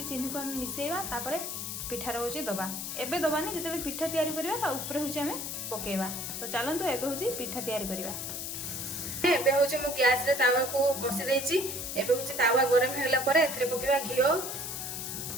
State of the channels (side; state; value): left; noise; hiss, 5 dB below the sound